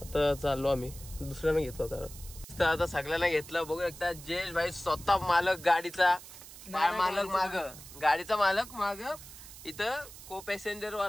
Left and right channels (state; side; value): noise; right; hiss, 16 dB below the sound